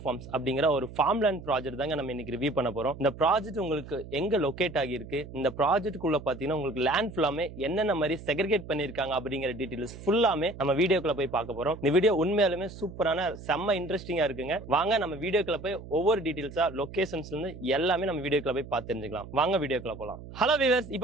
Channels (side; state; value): right; noise; hum, 14 dB below the sound